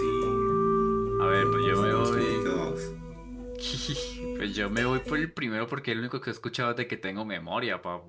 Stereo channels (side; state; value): both; identical; correlation 1.00